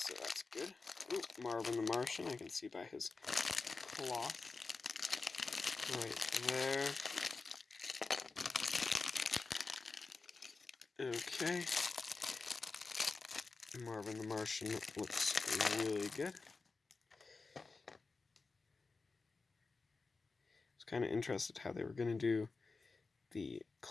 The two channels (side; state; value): right; quieter; 4.1 dB